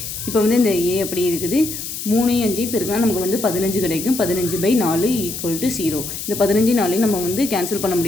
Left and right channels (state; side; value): noise; left; hiss, 7 dB below the sound